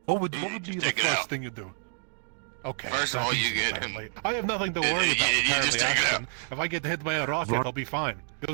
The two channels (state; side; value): silent; left; 59 dB below the other